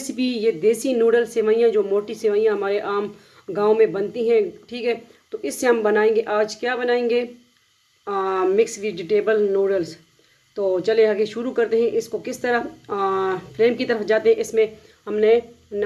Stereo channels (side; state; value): both; identical; correlation 1.00